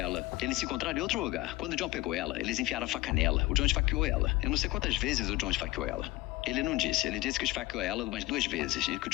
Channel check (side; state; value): right; quieter; 19.1 dB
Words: Eles se encontraram em outro lugar. Quando o John pegou ela, eles enfiaram a faca nela. O John esfaqueou ela. Eu não sei quantas vezes o John esfaqueou ela. Ele não disse. Ele disse que esfaqueou ela umas 2 vezes e que o